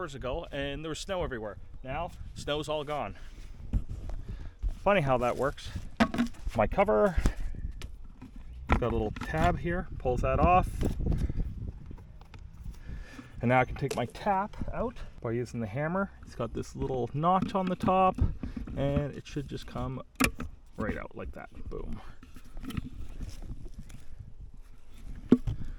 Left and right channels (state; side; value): identical; both; correlation 1.00